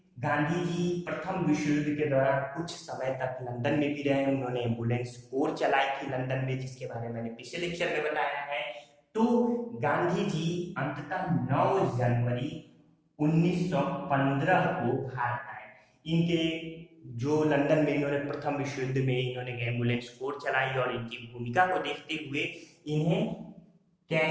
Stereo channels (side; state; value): both; identical; correlation 1.00